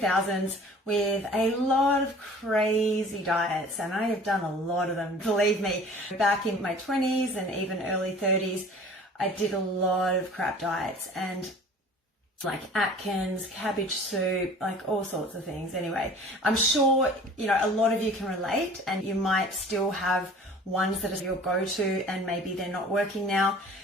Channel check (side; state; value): both; normal; correlation 0.46